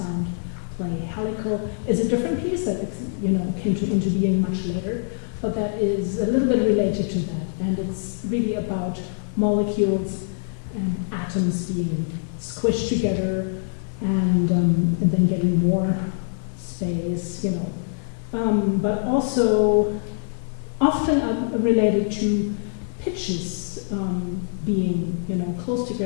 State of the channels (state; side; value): silent; right; 57 dB below the other